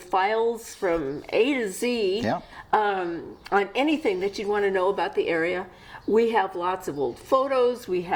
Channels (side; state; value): both; identical; correlation 1.00